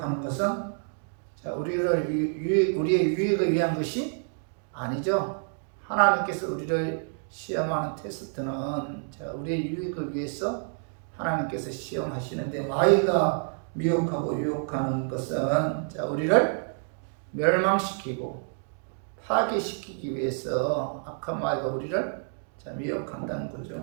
것은 우리의 유익을 위한 것이 아니죠. 하나님께서 우리를 시험하는 테스트는 우리의 유익을 위해서 하나님께서 시험하시는데 마귀가 미혹하고 유혹하는 것은 우리를 멸망시키고 파괴시키기 위해서 악한 마귀가 우리를 미혹한다는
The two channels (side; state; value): left; silent; 59 dB below the other